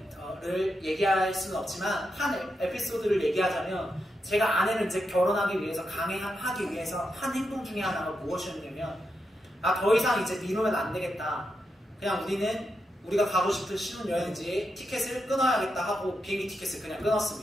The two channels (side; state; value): both; normal; correlation 0.86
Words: 얘기할 수는 없지만 한 에피소드를 얘기하자면 제가 아내를 이제 결혼하기 위해서 강행하기 위해서 한 행동 중에 하나가 무엇이었냐면 더 이상 이제 미루면 안 되겠다. 그냥 우리가 가고 싶은 신혼여행지에 티켓을 끊어야겠다 하고 비행기 티켓을 그냥